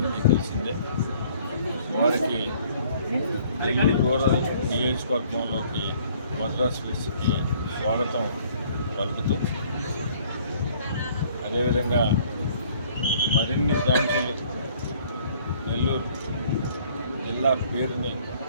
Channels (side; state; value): both; inverted; correlation -0.59